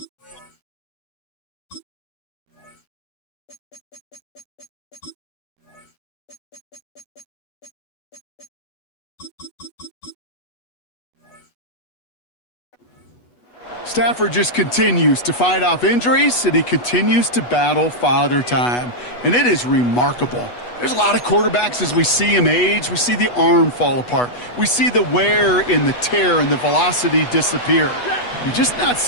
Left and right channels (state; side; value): late; right; 8.2 ms